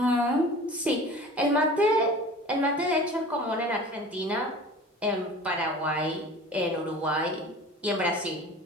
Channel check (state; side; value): normal; both; correlation 0.40